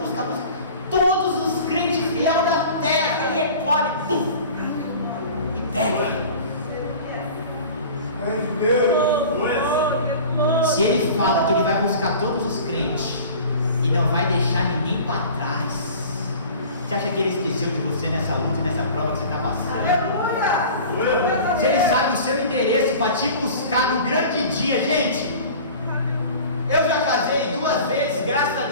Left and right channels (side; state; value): both; inverted; correlation -0.41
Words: Todos os crentes fiéis da terra, e recolhe, pum, e pega. Se ele fala que ele vai buscar todos os crentes e não vai deixar ninguém para trás, você acha que ele esqueceu de você nessa luta, nessa prova que você está passando? Se ele sabe o seu endereço para te buscar no grande dia, gente. Eu já casei 2 vezes, graças a